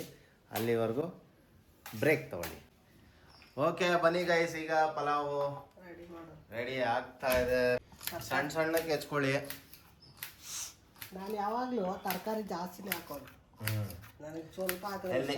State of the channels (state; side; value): identical; both; correlation 1.00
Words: ಅಲ್ಲಿವರೆಗೂ ಬ್ರೇಕ್ ತಗೊಳ್ಳಿ. ಓಕೆ ಬನ್ನಿ ಗೈಸ್, ಈಗ ಪಲಾವು ರೆಡಿ ಮಾಡೋದು ರೆಡಿ ಆಗ್ತಾ ಇದೆ. ಸಣ್ಣ ಸಣ್ಣಕ್ಕೆ ಹೆಚ್ಕೊಳ್ಳಿ. ನಾನು ಯಾವಾಗಲೂ ತರಕಾರಿ ಜಾಸ್ತಿನೇ ಹಾಕೋದು. ನನಗೆ ಸ್ವಲ್ಪ